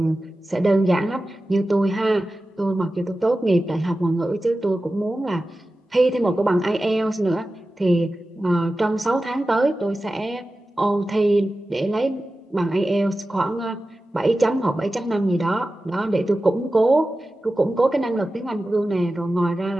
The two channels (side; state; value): both; normal; correlation 0.94